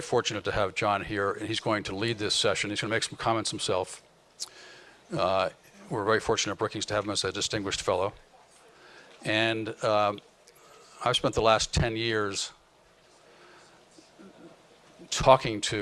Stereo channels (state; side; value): identical; both; correlation 1.00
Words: fortunate to have John here, and he's going to lead this session. He's going to make some comments himself. We're very fortunate at Brookings to have him as a distinguished fellow. And I've spent the last 10 years talking